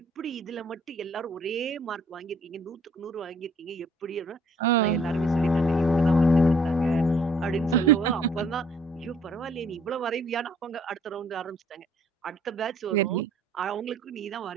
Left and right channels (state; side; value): normal; both; correlation 0.61